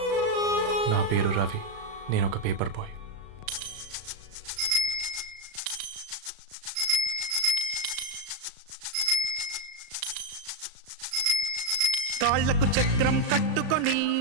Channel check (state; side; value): late; left; 36 ms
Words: నా పేరు రవి. నేను ఒక పేపర్ బాయ్. కాళ్లకు చక్రం కట్టుకొని